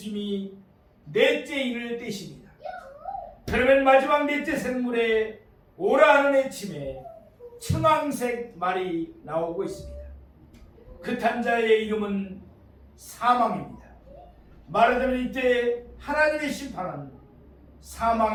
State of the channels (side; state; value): both; identical; correlation 1.00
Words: 넷째 인을 떼십니다. 그러면 마지막 넷째 생물에 오라 하는 외침에 청황색 말이 나오고 있습니다. 그 탄자의 이름은 사망입니다. 말하자면 이때 하나님의 심판은